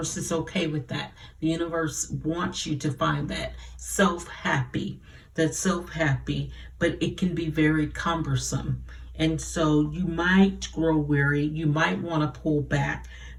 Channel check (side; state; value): both; identical; correlation 1.00